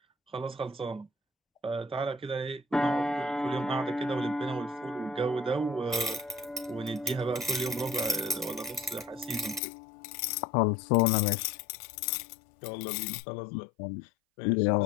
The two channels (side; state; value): right; drops out; at 9.6 s